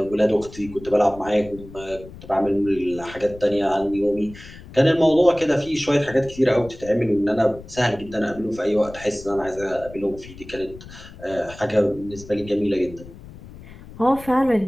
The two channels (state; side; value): noise; left; rumble, 17 dB below the sound